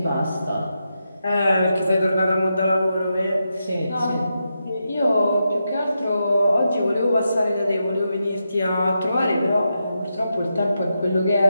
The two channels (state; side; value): inverted; both; correlation -0.86